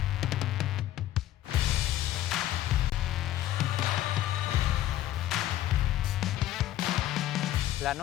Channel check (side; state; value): right; quieter; 13.4 dB